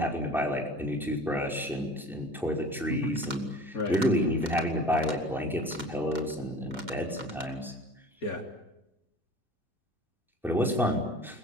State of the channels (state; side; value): normal; both; correlation 0.42